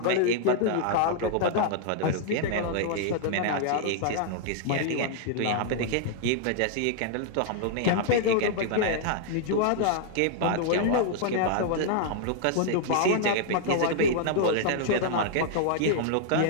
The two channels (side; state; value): both; different; correlation -0.01